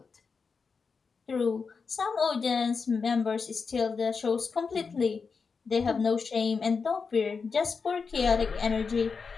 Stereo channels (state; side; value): quieter; right; 5.2 dB